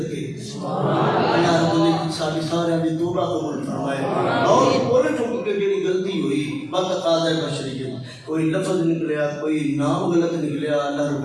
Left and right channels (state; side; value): identical; both; correlation 1.00